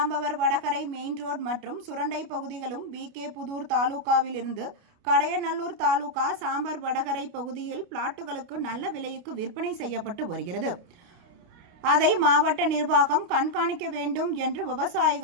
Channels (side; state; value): left; late; 29 ms